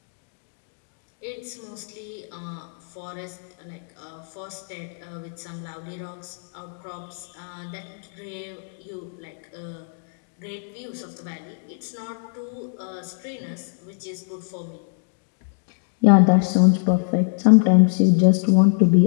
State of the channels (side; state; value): right; silent; digital silence